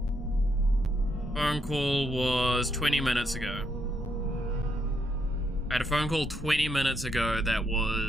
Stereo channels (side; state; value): both; normal; correlation 0.76